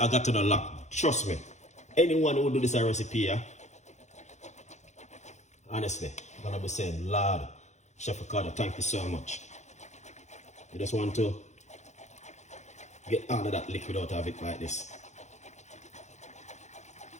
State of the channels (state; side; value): late; right; 0.33 ms